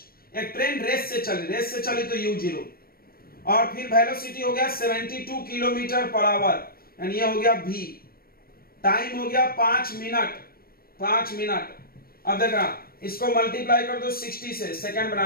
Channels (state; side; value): late; right; 0.44 ms